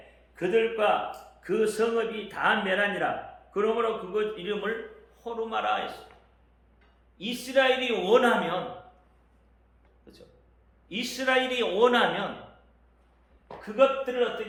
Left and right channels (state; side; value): identical; both; correlation 1.00